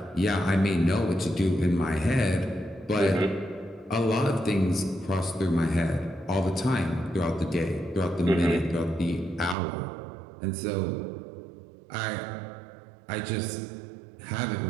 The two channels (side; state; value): left; drops out; at 9.6 s